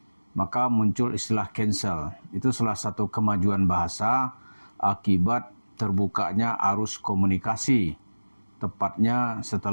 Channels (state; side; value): inverted; both; correlation -1.00